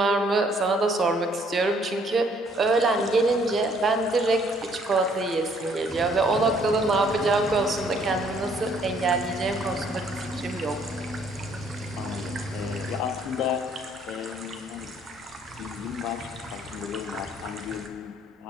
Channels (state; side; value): normal; both; correlation 0.64